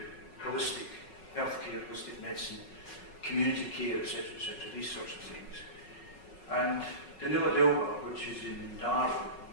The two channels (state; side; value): late; right; 5.4 ms